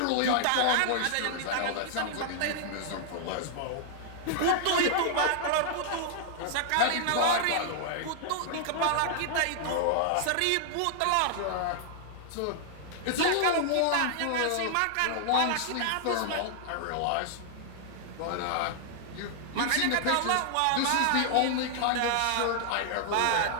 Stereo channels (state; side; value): different; both; correlation -0.01